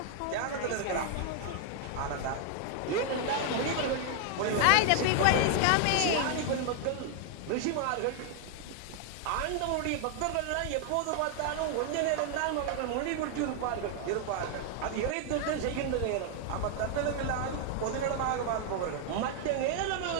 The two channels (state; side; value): different; both; correlation 0.00